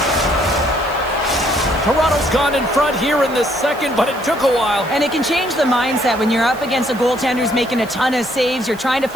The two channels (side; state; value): right; noise; hiss, 21 dB below the sound